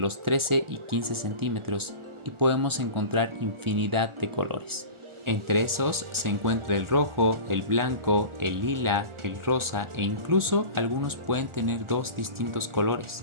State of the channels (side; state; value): left; late; 1.4 ms